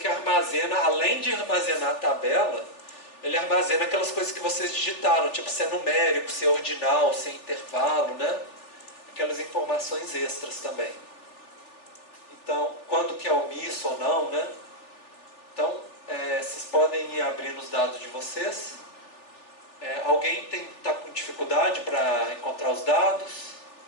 armazena, além de armazenar a tabela, ele armazena aquelas coisas que vocês digitaram, tipo se é numérico, se é ordinal, se é intervalo, né? Aquelas informações extras também. Então, quando que é omisso ou não, né? Então, vocês podem ir abrindo os dados de vocês. Alguém está com dificuldade para encontrar os dados?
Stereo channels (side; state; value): right; late; 3.4 ms